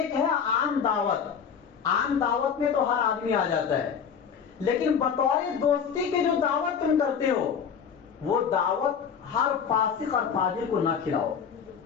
ہے عام دعوت، عام دعوت میں تو ہر آدمی آ جاتا ہے، لیکن بطور دوستی کے جو دعوت تم کرتے ہو وہ دعوت ہر فاسق اور فاجر کو نہ کھلاؤ،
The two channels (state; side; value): quieter; right; 7.1 dB